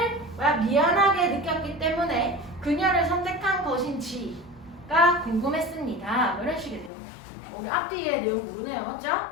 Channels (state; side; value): drops out; right; at 6.9 s